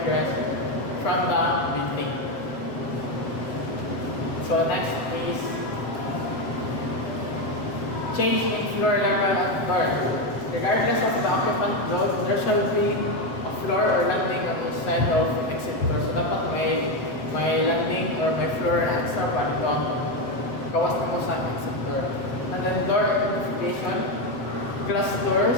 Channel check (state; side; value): late; right; 7.8 ms